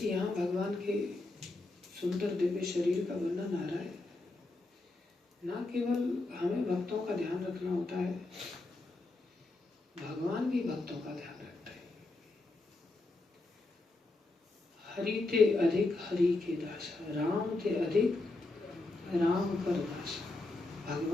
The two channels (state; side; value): quieter; right; 3.0 dB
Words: यहाँ भगवान के सुंदर दिव्य शरीर का वर्णन आ रहा है, न केवल हमें भक्तों का ध्यान रखना होता है, भगवान भी भक्तों का ध्यान रखता है। हरि ते अधिक हरि के दासा, राम ते अधिक राम कर दासा।